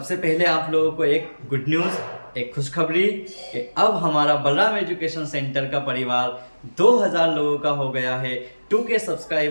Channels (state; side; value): inverted; both; correlation -1.00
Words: पहले आप लोगों को एक गुड न्यूज़, एक खुशखबरी कि अब हमारा बलराम एजुकेशन सेंटर का परिवार 2000 लोगों का हो गया है। 2K